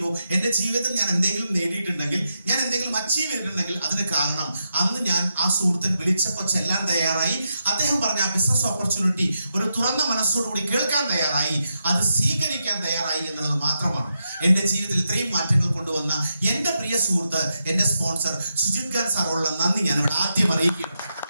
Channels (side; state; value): both; inverted; correlation -0.85